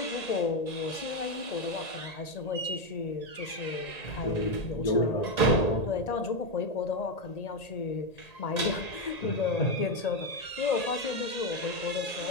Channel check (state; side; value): late; right; 1.8 ms